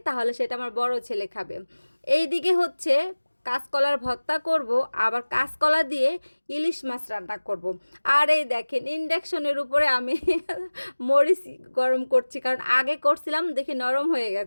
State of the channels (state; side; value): inverted; both; correlation -1.00